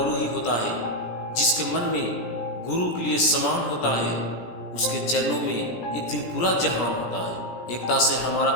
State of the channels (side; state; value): right; late; 17 ms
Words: ही होता है। जिसके मन में गुरु के लिए समान होता है उसके चरणों में एक दिन पूरा जहान होता है। एकता से हमारा